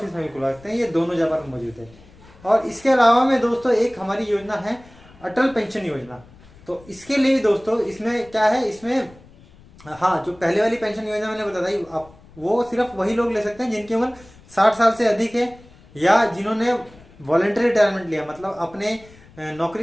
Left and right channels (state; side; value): noise; left; rumble, 24 dB below the sound